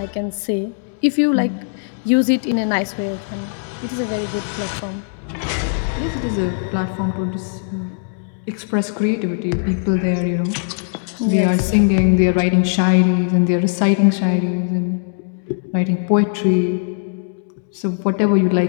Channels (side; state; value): right; silent; digital silence